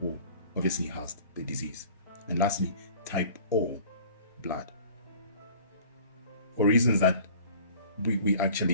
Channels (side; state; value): both; inverted; correlation -0.47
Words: obviously has the disease. And lastly, type O blood. For reasons that we